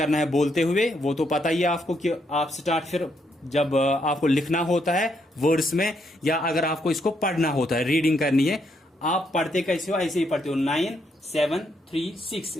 है बोलते हुए। वो तो पता ही है आपको कि आप स्टार्ट फिर जब आपको लिखना होता है वर्ड्स में, या अगर आपको इसको पढ़ना होता है, रीडिंग करनी है, आप पढ़ते कैसे हो, ऐसे ही पढ़ते हो 9 7 3 6,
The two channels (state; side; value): normal; both; correlation 0.76